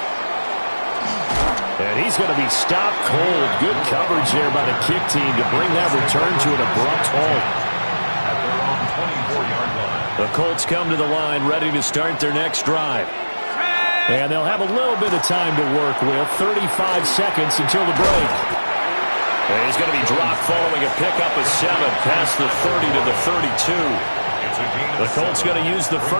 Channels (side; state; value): both; inverted; correlation -1.00